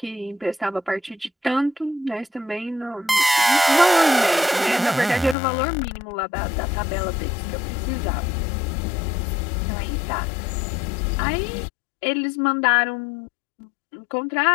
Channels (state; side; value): drops out; right; at 5.4 s